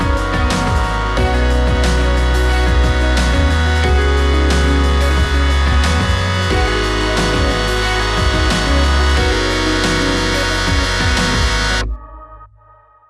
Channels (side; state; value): both; identical; correlation 1.00